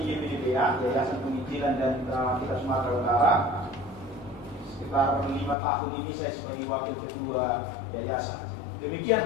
di YPDPA, Yayasan Penginjilan dan kita Sumatera Utara. Sekitar 5 tahun ini saya sebagai wakil ketua yayasan.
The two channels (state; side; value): drops out; right; at 5.6 s